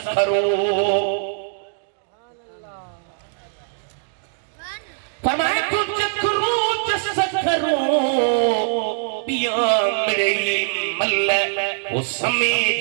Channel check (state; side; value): silent; left; digital silence